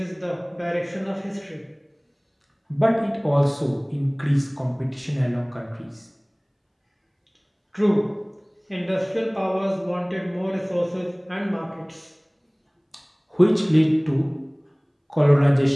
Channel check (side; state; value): both; identical; correlation 1.00